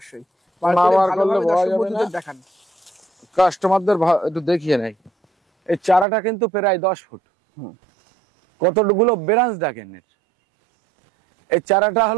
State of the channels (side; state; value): left; drops out; at 6.1 s